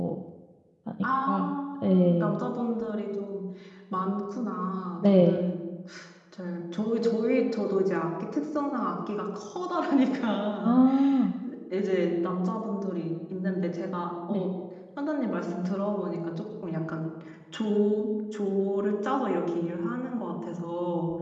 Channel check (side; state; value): both; identical; correlation 1.00